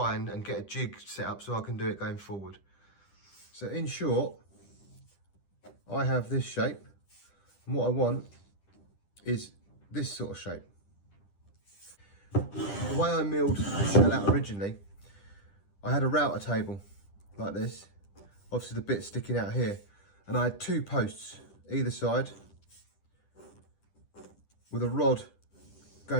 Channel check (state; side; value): late; right; 10 ms